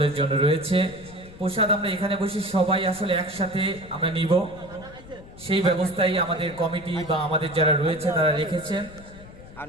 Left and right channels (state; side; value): noise; left; rumble, 18 dB below the sound